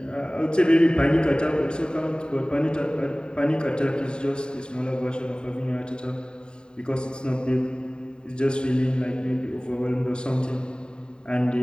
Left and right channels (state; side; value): late; right; 0.049 ms